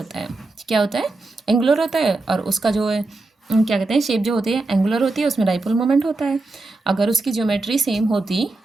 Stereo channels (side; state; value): left; quieter; 3.2 dB